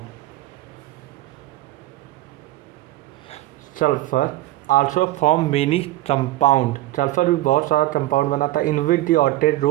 Sulphur also form many compound. Sulphur भी बहुत सारा कंपाउंड बनाता है। In which the octet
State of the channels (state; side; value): quieter; left; 16.7 dB